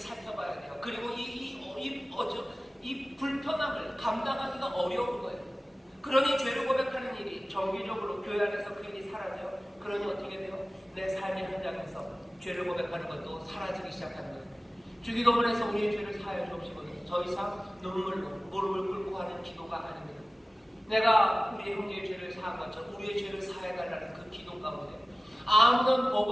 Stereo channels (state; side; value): normal; both; correlation 0.97